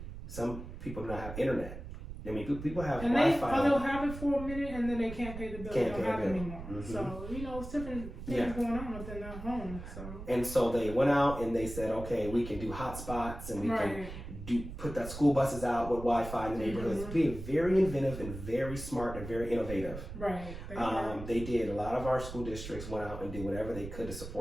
some people do not have internet. I mean, people have Wi-Fi. They'll have it for a minute and then they can't pay the bill. They don't have it anymore. So, it's different things going on within their home. So. And so they went out and they said, okay, we can do hotspots and we can put that school buses out with Wi-Fi in the neighborhoods. Being very inventive and very smart and very innovative. Right. They did. A lot of our school districts went out and did whatever they could to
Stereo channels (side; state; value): right; noise; rumble, 10 dB below the sound